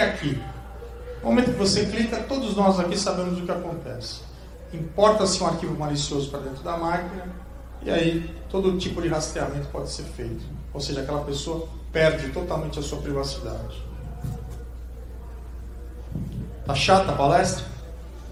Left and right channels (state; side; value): identical; both; correlation 1.00